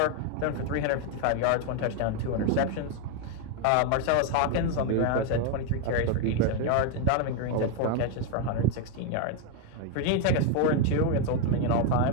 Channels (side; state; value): both; different; correlation 0.01